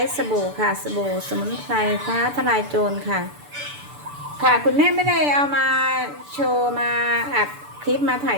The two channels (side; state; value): left; late; 6.9 ms